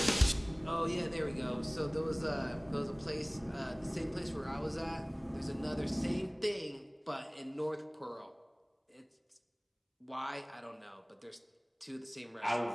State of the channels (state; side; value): identical; both; correlation 1.00